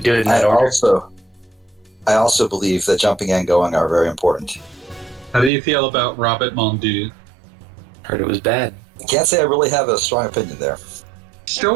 do it in that I order. also believe that jumping and going are very important. How do you feel about Robert Mondu? Heard it was bad. I can't say I really have a strong opinion there. Still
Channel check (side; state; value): left; drops out; at 5.5 s